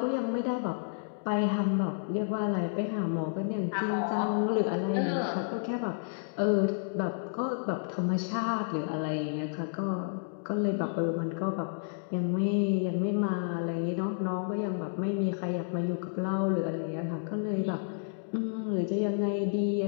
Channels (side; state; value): right; silent; digital silence